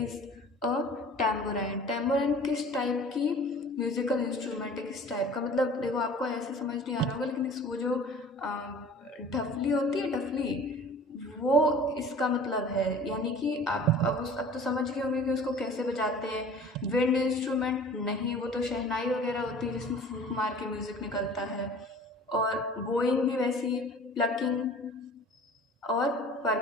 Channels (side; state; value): both; normal; correlation 0.44